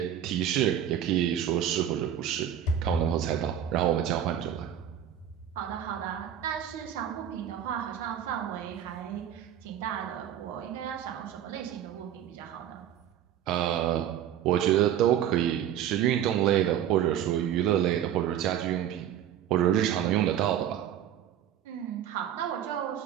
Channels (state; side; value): quieter; left; 10.3 dB